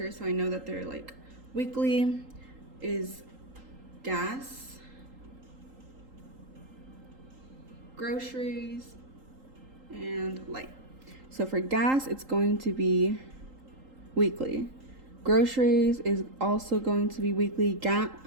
so I know that they're like weekly, is gas, groceries, and light. So for gas, it's going to be weekly. Groceries is also going to be weekly.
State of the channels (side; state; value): left; late; 3.8 ms